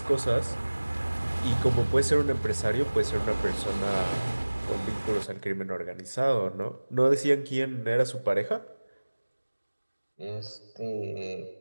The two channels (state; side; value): inverted; both; correlation -1.00